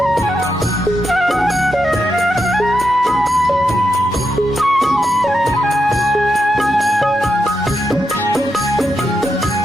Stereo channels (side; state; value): both; normal; correlation 0.85